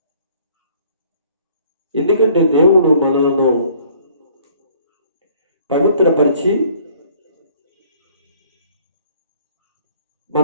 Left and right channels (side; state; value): both; inverted; correlation -0.57